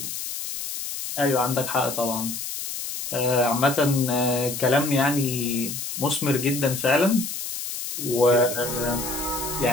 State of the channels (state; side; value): noise; left; hiss, 6 dB below the sound